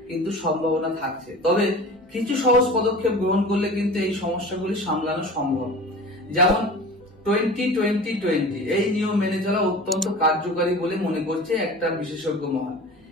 কিন্তু সম্ভাবনা থাকছে। তবে কিছু সহজ পদক্ষেপ গ্রহণ করলে কিন্তু এই সমস্যাগুলি সামলানো সম্ভব। যেমন 20-20-20 এই নিয়ম মেনে চলা অত্যন্ত কার্যকারী বলে মনে করছে একটা বিশেষজ্ঞ মহল।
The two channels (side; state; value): both; normal; correlation 0.37